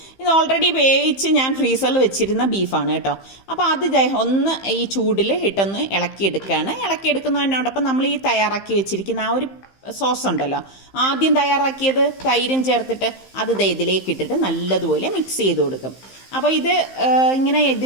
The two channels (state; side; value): late; right; 15 ms